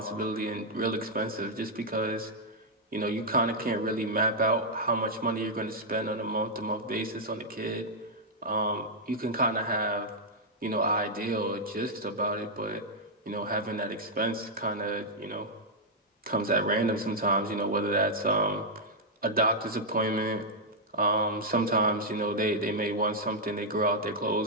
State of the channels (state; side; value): normal; both; correlation -0.04